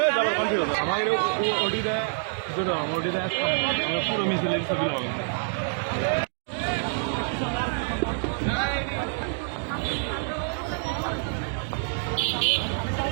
，যাবার কন্টিনিউ হবে আমাদের ওটিতে ওটিতে পুরো মিছিলের ছবি হবে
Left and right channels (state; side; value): silent; left; 58 dB below the other